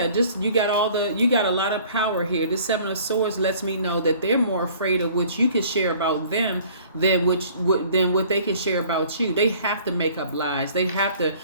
you got a lot of power here. This Seven of Swords lets me know that they're more afraid of what you can share about them than what they can share about you. They have to make up lies. They have to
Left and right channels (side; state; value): both; inverted; correlation -0.52